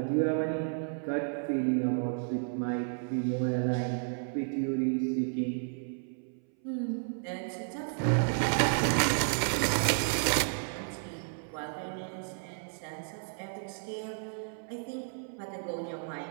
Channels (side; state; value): left; silent; 56 dB below the other